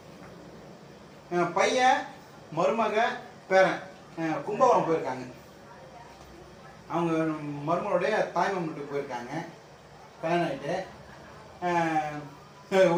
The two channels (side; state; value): both; identical; correlation 1.00